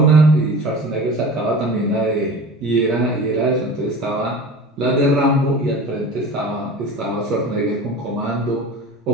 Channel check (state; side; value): normal; both; correlation 0.37